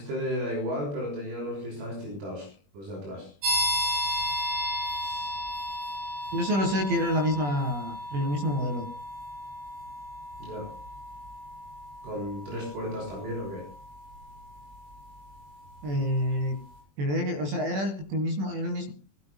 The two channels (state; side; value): late; left; 21 ms